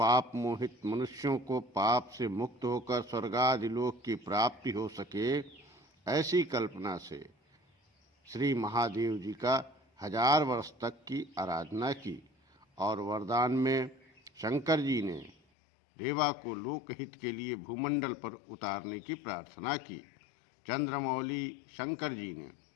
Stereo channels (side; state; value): right; drops out; at 15.4 s